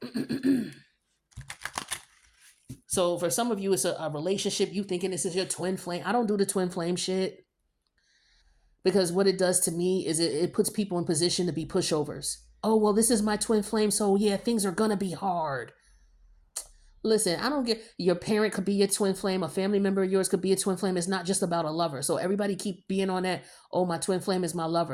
So for some of you, it's a relationship. You thinking this is your twin flame. I don't do the twin flame shit. Because what it does to me is it puts people in position to be pushovers. Oh, well, this is my twin flame. So yeah, things are going to be hard. Listen, I don't get, your parent could be your twin flame. A family member of yours could be a twin flame. It's not just about a lover. So everybody keep being on that. Oh, my twin flame is my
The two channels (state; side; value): identical; both; correlation 1.00